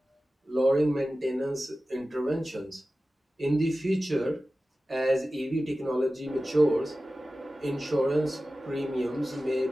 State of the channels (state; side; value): normal; both; correlation 0.95